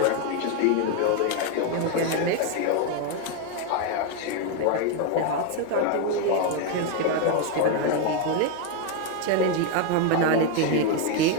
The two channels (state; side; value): different; both; correlation 0.01